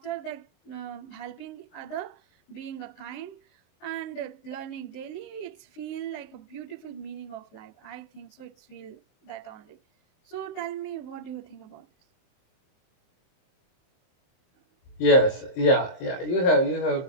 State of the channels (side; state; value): right; late; 23 ms